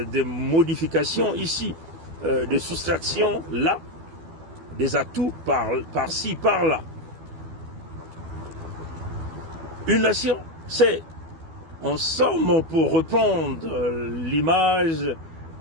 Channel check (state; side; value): late; left; 12 ms